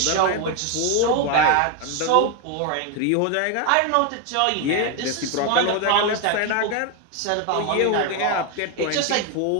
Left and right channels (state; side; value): different; both; correlation 0.01